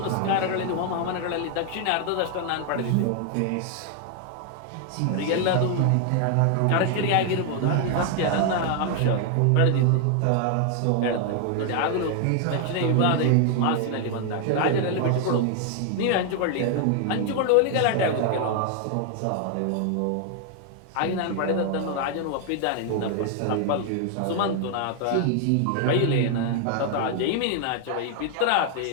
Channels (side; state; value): both; different; correlation 0.00